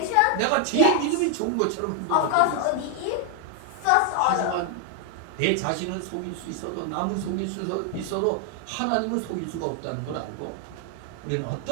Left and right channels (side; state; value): both; different; correlation 0.00